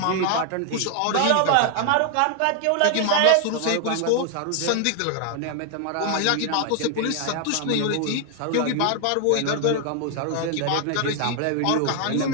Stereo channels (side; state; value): both; different; correlation 0.00